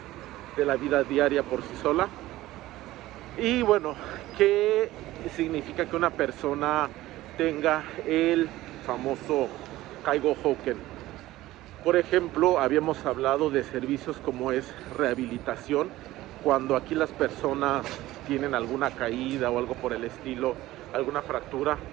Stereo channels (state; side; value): quieter; left; 16.4 dB